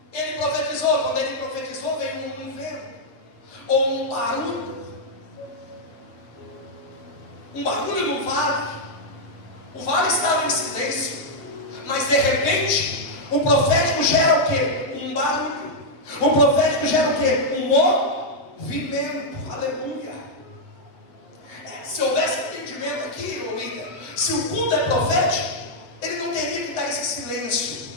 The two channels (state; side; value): late; right; 7.8 ms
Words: ele profetizou, quando ele profetizou veio um vento, ou um barulho no vale. O vale estava em silêncio, mas de repente o profético gera o quê? Um barulho. O profético gera o quê? Um movimento. vimento, aleluia. Se houvesse entendimento aqui, William, se o culto é profético, ele não teria que dar esse silêncio,